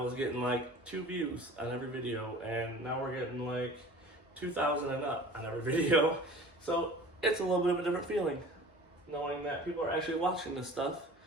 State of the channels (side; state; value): both; normal; correlation 0.43